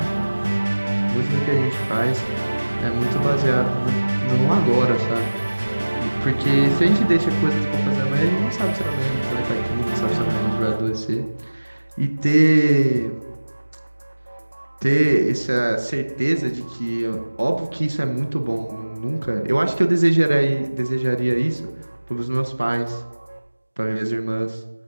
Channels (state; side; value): inverted; both; correlation -1.00